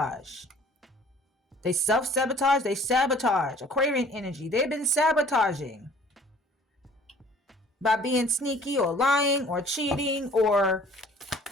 They self-sabotage. They sabotage. Aquarian energy. They've been sabotaging. By being sneaky or lying or cheating or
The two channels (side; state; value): both; normal; correlation 0.52